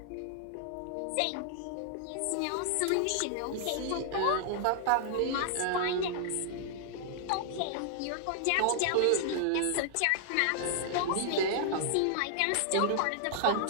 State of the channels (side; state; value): both; different; correlation 0.00